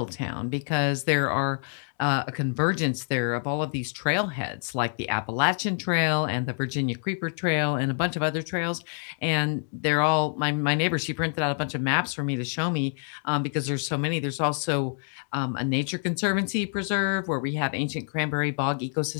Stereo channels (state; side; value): silent; right; 56 dB below the other